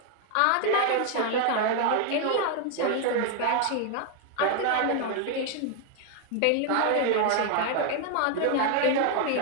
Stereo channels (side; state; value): both; different; correlation 0.00